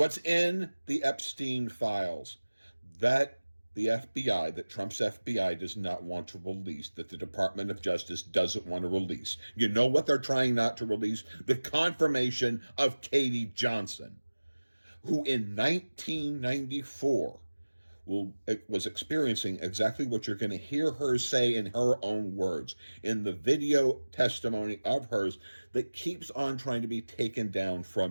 in the Epstein files that the FBI, that Trump's FBI does not want to release, that the Department of Justice doesn't want to release. You know what they're trying not to release? The confirmation of Katie Johnson, who in 1994 was experiencing exactly what you're going to hear her say in her own words in the video testimony of hers that keeps on trying to be taken down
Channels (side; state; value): both; inverted; correlation -1.00